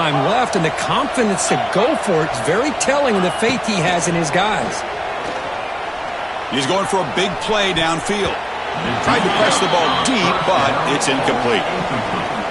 left, and the confidence to go for it is very telling of the faith he has in his guys. He's going for a big play downfield. Tried to press the ball deep, but it's incomplete.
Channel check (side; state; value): both; identical; correlation 1.00